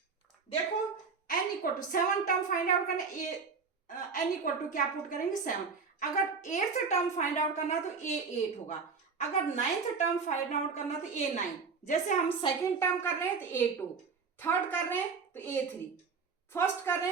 देखो n equal to 7 term find out करना, n इक्वल टू क्या पुट करेंगे, 7। अगर 8th टर्म फाइंड आउट करना है तो ए 8 होगा, अगर 9th टर्म फाइंड आउट करना है तो ए 9। जैसे हम सेकेंड टर्म कर रहे हैं तो ए 2, थर्ड कर रहे हैं तो ए 3, फर्स्ट कर रहे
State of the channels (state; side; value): quieter; left; 5.2 dB